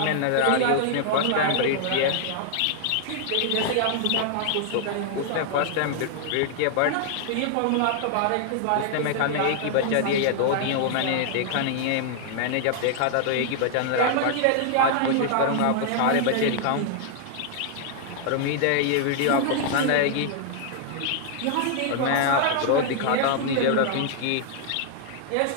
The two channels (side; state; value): both; different; correlation 0.00